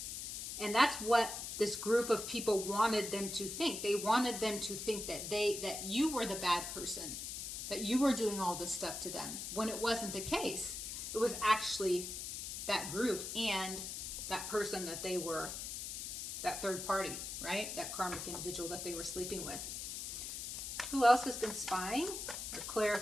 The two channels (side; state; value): left; noise; hiss, 5 dB below the sound